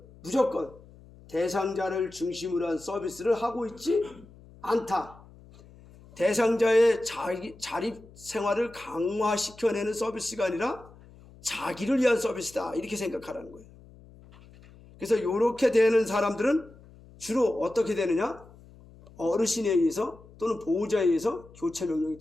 무조건 대상자를 중심으로 한 서비스를 하고 있지 않다. 대상자의 자립 생활을 강화시켜내는 서비스가 아니라 자기를 위한 서비스다. 이렇게 생각하라는 거예요. 그래서 이렇게 되는 사람들은 주로 어떻게 되느냐? 어르신에 의해서 또는 보호자에 의해서 교체 명령이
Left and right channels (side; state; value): left; noise; hum, 23 dB below the sound